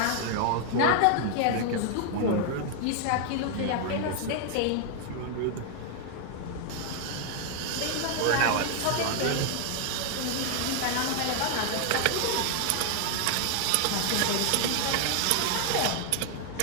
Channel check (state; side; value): different; both; correlation 0.00